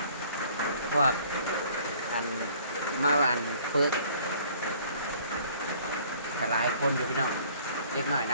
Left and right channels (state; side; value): inverted; both; correlation -0.56